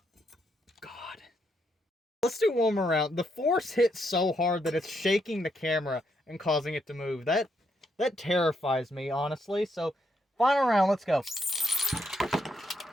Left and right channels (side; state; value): both; normal; correlation 0.77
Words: God. Let's do one more round. The force hits so hard that it's shaking the camera and causing it to move. That terrifies me, honestly. So, final round, let's go.